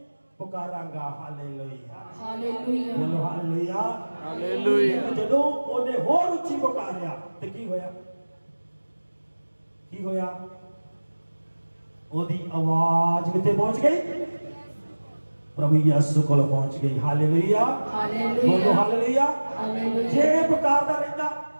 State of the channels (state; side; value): inverted; both; correlation -1.00